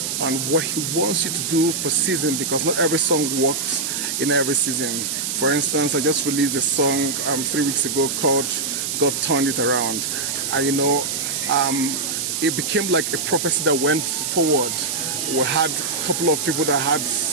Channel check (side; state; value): right; noise; hiss, 2 dB below the sound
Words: what He wants you to do per season, because not every song works in every season. For instance, I just released a song 3 weeks ago called God Turned It Around. And it became like a prophecy that went forward. We had a couple of people that had,